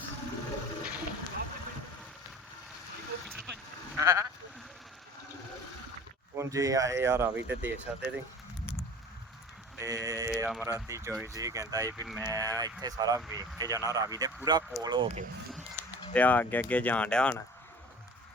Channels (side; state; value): both; normal; correlation 0.42